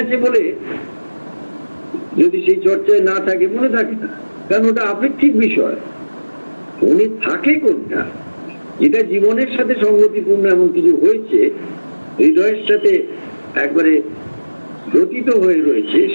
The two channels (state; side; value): inverted; both; correlation -1.00